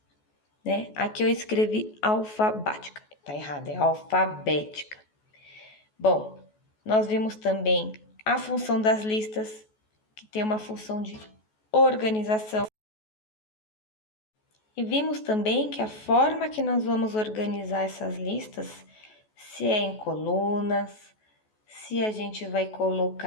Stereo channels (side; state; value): right; late; 14 ms